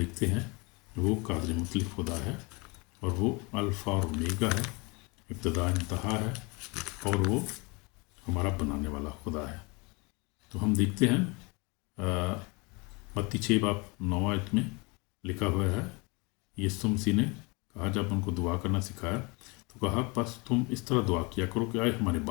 हैं वो कादिर मुतलक खुदा है, और वो अल्फ़ा और ओमेगा है, इब्तदा इंतहा है, और वो हमारा बनाने वाला खुदा है। तो हम देखते हैं मत्ती 6:9 में लिखा हुआ है, यीशु मसीह ने कहा, जब उनको दुआ करना सिखाया तो कहा, बस तुम इस तरह दुआ किया करो कि आए हमारे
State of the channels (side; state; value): right; quieter; 28.4 dB